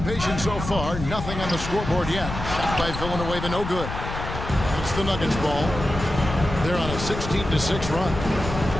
patient so far. Nothing on the scoreboard yet. Shot by Villanueva, no good. It's the Nuggets ball. They're on a 16-6 run.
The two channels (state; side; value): noise; left; rumble, 7 dB below the sound